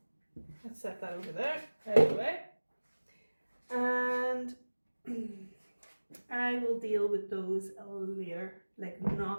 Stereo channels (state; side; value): inverted; both; correlation -1.00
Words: let's set that over there, out of the way. And I will deal with those later, like